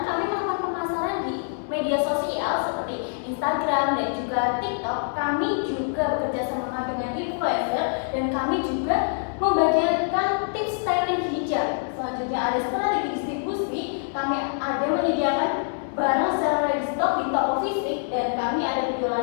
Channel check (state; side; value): silent; right; 58 dB below the other